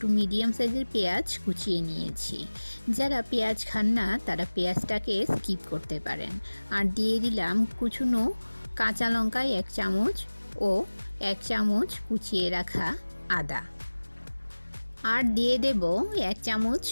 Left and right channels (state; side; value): inverted; both; correlation -1.00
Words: মিডিয়াম সাইজের পেঁয়াজ কুচিয়ে নিয়েছি। যারা পেঁয়াজ খান না তারা পেঁয়াজটাকে স্কিপ করতে পারেন। আর দিয়ে দিলাম কুচুনো কাঁচা লঙ্কা 1 চামচ ও 1 চামচ কুচিয়ে রাখা আদা। আর দিয়ে দেব 1 চামচ